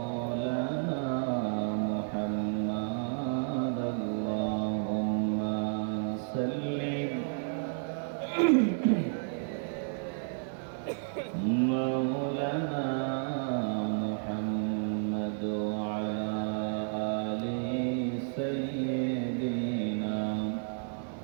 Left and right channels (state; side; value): silent; left; digital silence